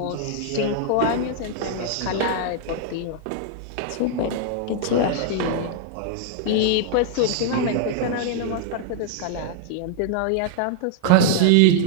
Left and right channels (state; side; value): different; both; correlation -0.01